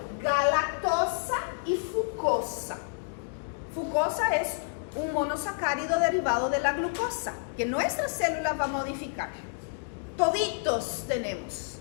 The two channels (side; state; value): right; silent; digital silence